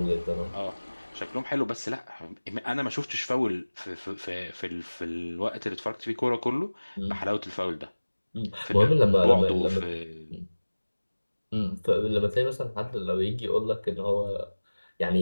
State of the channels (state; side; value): inverted; both; correlation -1.00